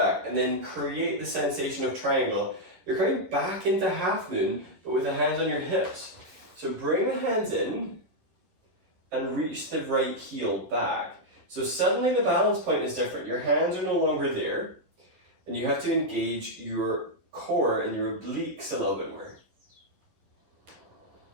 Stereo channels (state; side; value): late; left; 11 ms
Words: and then create the sensation of triangle. You're coming back into half moon, but with the hands on your hips. So bring the hands in and reach the right heel back. So suddenly the balance point is different. Your hands are no longer there, and you have to engage your core and your obliques a little bit more.